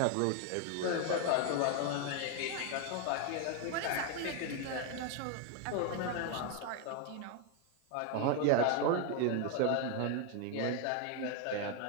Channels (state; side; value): different; both; correlation 0.01